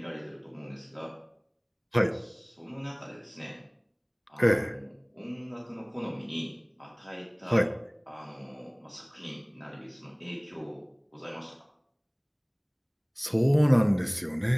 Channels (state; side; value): identical; both; correlation 1.00